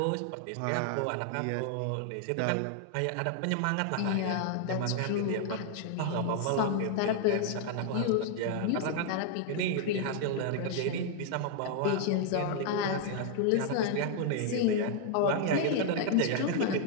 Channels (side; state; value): both; different; correlation 0.00